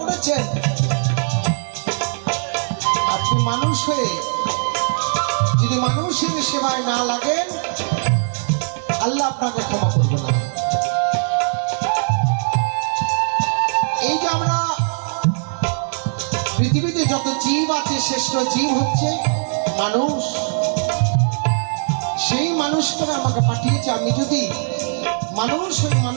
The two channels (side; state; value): left; silent; 66 dB below the other